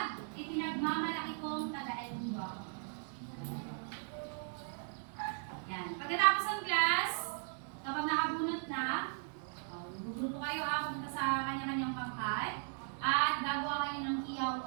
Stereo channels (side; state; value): left; silent; 53 dB below the other